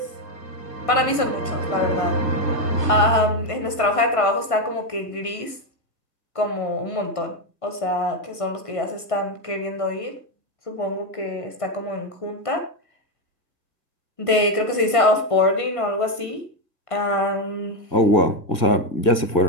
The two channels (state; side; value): late; right; 1.5 ms